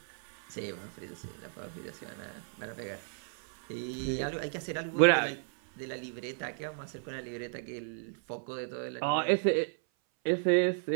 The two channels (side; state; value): left; silent; 55 dB below the other